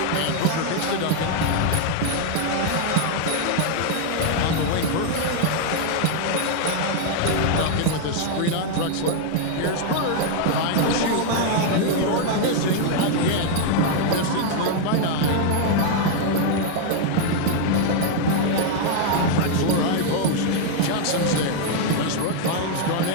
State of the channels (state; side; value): different; both; correlation 0.00